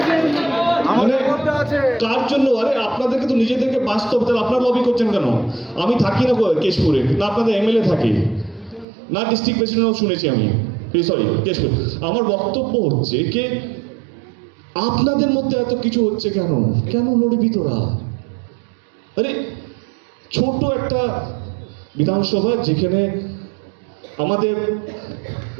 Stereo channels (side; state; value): left; drops out; at 8.8 s